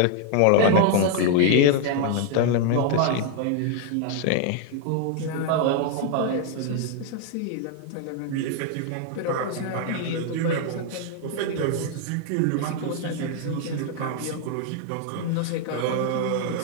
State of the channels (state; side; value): different; both; correlation 0.00